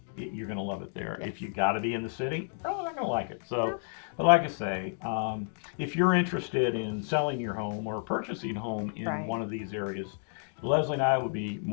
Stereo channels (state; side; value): silent; right; 57 dB below the other